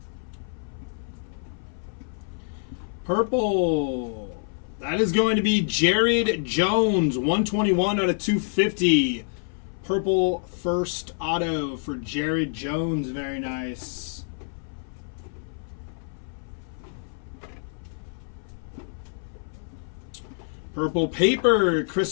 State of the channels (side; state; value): right; silent; 60 dB below the other